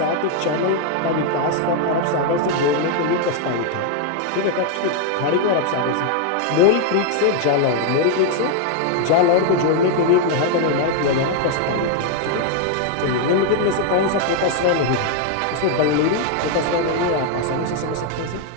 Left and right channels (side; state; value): both; different; correlation 0.00